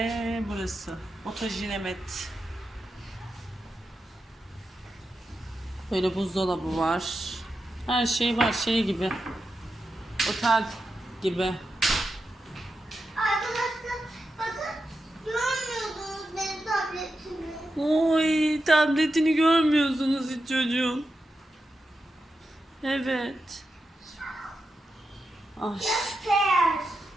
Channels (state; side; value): normal; both; correlation 0.89